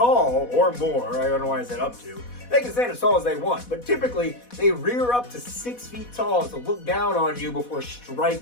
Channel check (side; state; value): right; late; 4.1 ms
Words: or more. I don't know why I said up to. They can stand as tall as they want, but typically they rear up to 6 feet tall to look down on you before